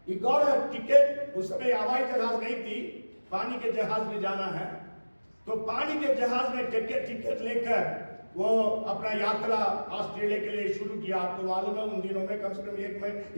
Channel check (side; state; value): both; inverted; correlation -1.00